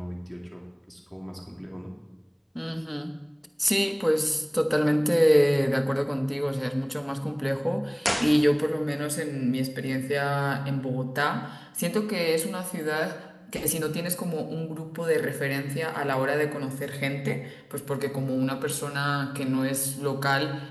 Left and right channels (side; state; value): both; identical; correlation 1.00